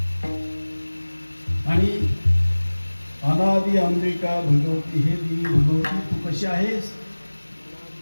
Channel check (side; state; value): both; inverted; correlation -1.00